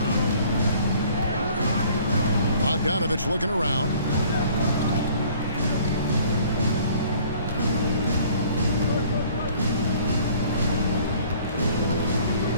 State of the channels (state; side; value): inverted; both; correlation -0.54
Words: Bogdanovich looking around.